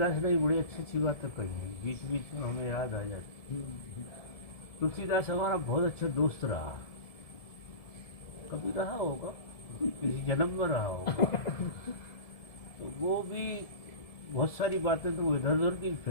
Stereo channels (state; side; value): late; right; 1.7 ms